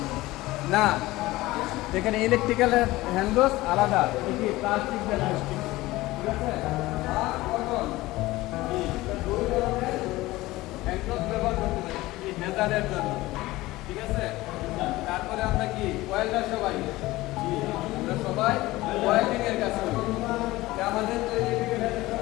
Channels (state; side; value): quieter; right; 18.6 dB